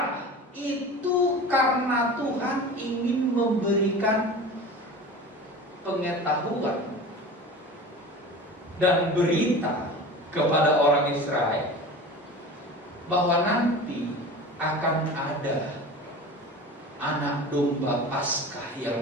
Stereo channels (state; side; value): normal; both; correlation 0.34